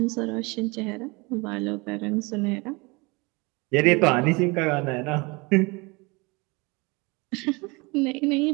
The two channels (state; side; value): quieter; left; 26.7 dB